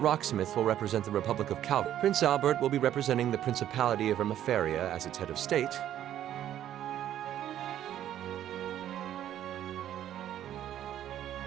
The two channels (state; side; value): quieter; left; 11.5 dB